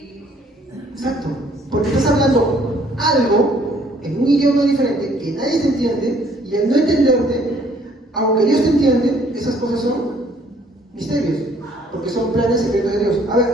Exacto, porque estás hablando algo en un idioma diferente que nadie te entiende, y al no entenderte, aunque Dios te entiende, esas cosas son misterios, porque son planes secretos de Dios. A ver,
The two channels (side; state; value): both; normal; correlation 0.61